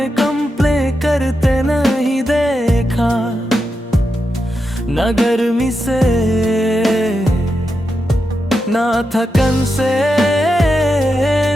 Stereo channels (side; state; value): both; normal; correlation 0.87